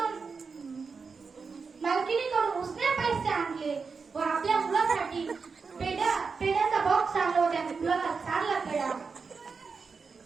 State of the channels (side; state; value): left; quieter; 5.0 dB